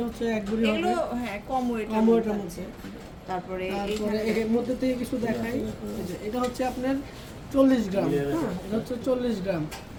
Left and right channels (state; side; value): identical; both; correlation 1.00